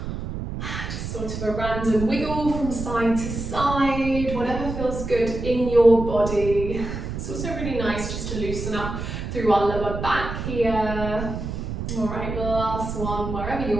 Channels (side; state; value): right; noise; rumble, 5 dB below the sound